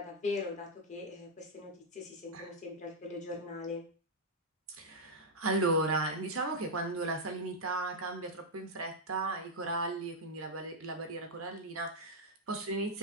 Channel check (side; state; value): both; normal; correlation -0.04